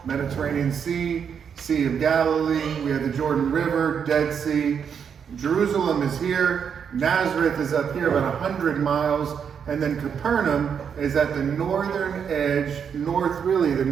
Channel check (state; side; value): quieter; left; 7.3 dB